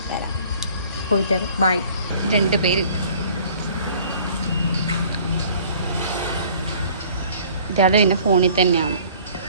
വരാം. ബൈ. 2 പേര്. ഇയാള് പിന്നെ ഫോണിൽ തന്നെയാണ്.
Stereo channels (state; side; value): inverted; both; correlation -0.52